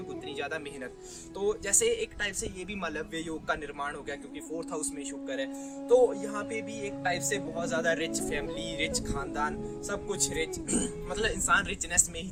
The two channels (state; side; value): identical; both; correlation 1.00